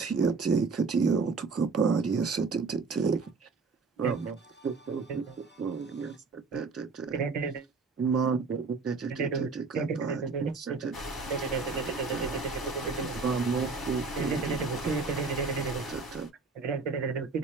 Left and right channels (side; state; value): left; quieter; 4.4 dB